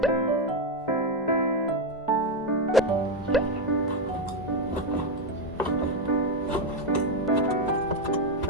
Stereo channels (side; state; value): both; normal; correlation 0.07